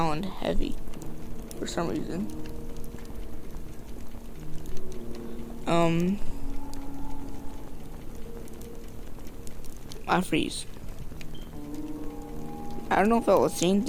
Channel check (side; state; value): both; identical; correlation 1.00